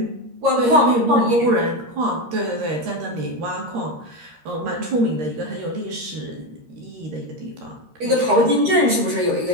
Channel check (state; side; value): late; left; 13 ms